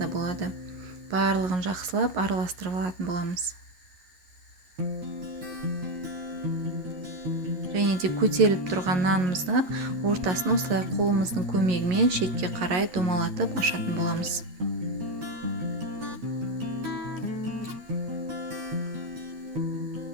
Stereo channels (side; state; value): left; late; 11 ms